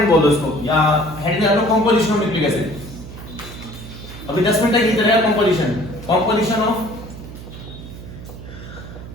बोल दो इसको, या हेड में आलो कंपोजिशन ऑफ न्यूक्लिक एसिड। अभी 10 मिनट तक ये चलेगा कंपोजिशन ऑफ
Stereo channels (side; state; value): right; noise; hum, 13 dB below the sound